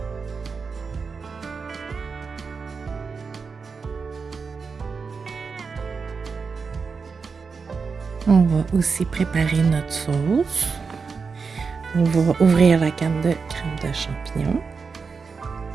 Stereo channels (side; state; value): left; quieter; 5.1 dB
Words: On va aussi préparer notre sauce. On va ouvrir la canne de crème de champignons.